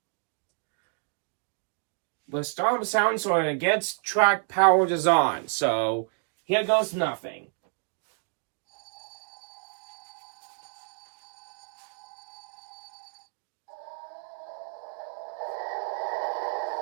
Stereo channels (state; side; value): silent; left; 58 dB below the other